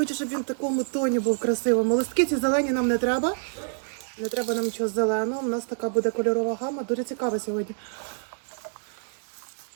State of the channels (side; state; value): left; silent; 58 dB below the other